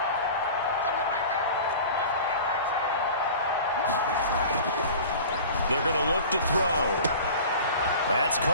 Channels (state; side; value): inverted; both; correlation -0.39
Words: They're going to look to throw. That's